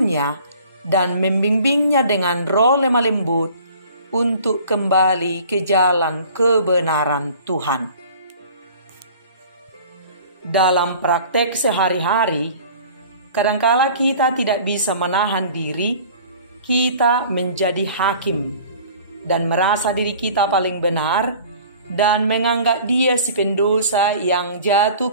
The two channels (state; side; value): inverted; both; correlation -0.47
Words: dan membimbingnya dengan roh lemah lembut untuk kembali ke jalan kebenaran Tuhan. Dalam praktek sehari-hari, kadangkala kita tidak bisa menahan diri, kita menjadi hakim dan merasa diri kita paling benar dan menganggap dia si pendosa yang jatuh